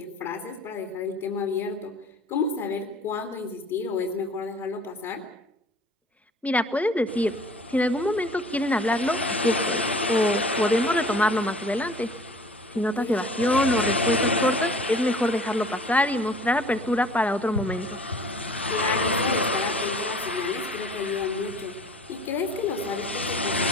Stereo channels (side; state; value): both; normal; correlation 0.48